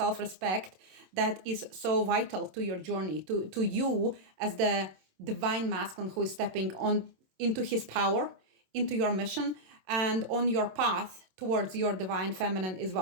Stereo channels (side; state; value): left; late; 27 ms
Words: that is so vital to your journey, to you as the divine masculine who is stepping on into his power, into your mission, and on your path towards your divine feminine as